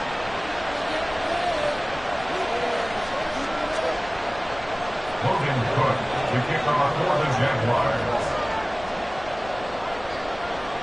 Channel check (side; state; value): left; noise; rumble, 17 dB below the sound